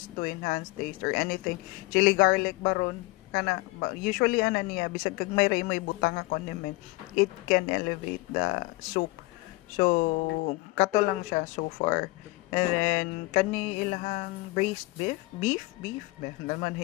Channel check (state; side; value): quieter; right; 22.4 dB